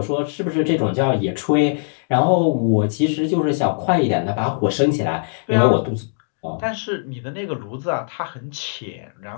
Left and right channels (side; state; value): right; silent; digital silence